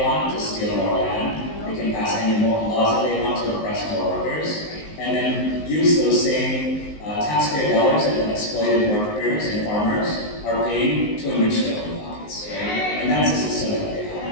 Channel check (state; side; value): late; right; 19 ms